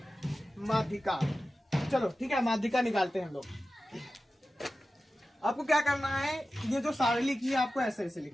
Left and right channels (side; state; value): both; normal; correlation 0.94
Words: माध्यिका। चलो ठीक है, माध्यिका निकालते हैं हम लोग। आपको क्या करना है, ये जो सारणी लिखी है आपको ऐसे ऐसे